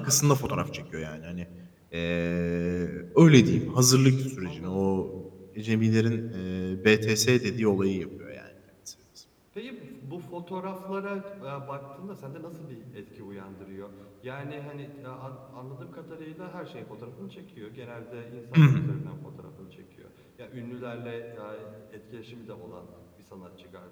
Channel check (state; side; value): identical; both; correlation 1.00